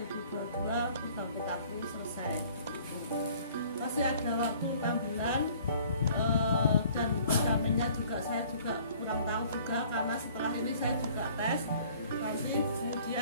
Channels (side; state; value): both; inverted; correlation -0.54